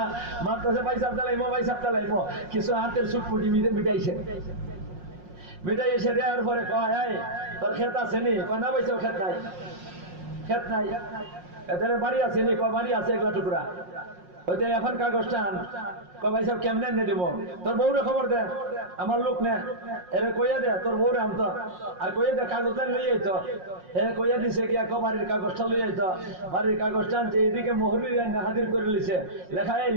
মাত্র পয়সা চালাইমো, পয়সা চালাইমো, কিছু হাতের চুটপুটি মিটাইছে, মিটাই এসে দেওয়ার পরে কয় তোর ক্ষেত আছে নি? কয় না পয়সা ক্ষেত নাই, ক্ষেত নাই। এদের বাড়ি আছে নি? কয় বাড়ি আছে 1 টুকরা। হয়তো এখন কাগজটা আন, কয় ভাই সাহেব কেমনে এনে দিব? তোর বউরে খবর দে, আমার লোক নে, এরে কইয়া দে তোর বউরে আনতো, আর কইয়া দে কাগজটা লই আইতো। এ কইয়া দিছে কি এক বাড়ির কাগজটা লই আইতো, বাড়ির কাগজটা আনছে, এদিকে মহরির হাজির করে লিছে, লেখা এই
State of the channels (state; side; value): late; left; 5.6 ms